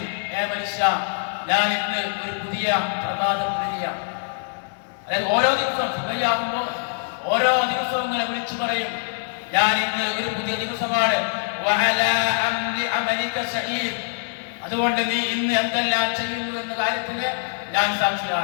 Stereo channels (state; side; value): silent; right; digital silence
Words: ഹേ മനുഷ്യ, ഞാൻ ഇന്ന് ഒരു പുതിയ പ്രഭാതപരിയാണ്. അതായത് ഓരോ ദിവസവും സുബഹിയാകുമ്പോൾ ഓരോ ദിവസവും ഇങ്ങനെ വിളിച്ചു പറയും, ഞാൻ ഇന്ന് ഒരു പുതിയ ദിവസമാണ്. വഅലാ അംരി അമലിക ഷഹീദ്, അതുകൊണ്ട് നീ ഇന്ന് എന്തെല്ലാം ചെയ്യുന്നു എന്ന കാര്യത്തിന് ഞാൻ